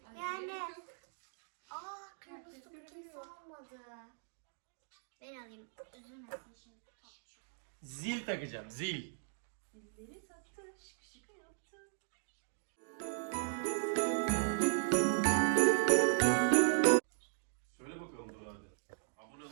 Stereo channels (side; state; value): left; silent; digital silence